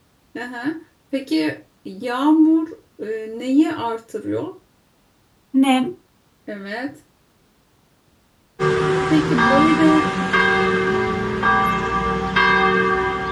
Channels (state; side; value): identical; both; correlation 1.00